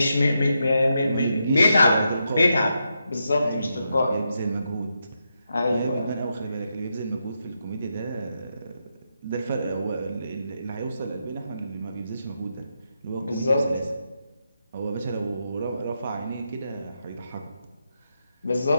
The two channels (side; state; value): both; inverted; correlation -0.84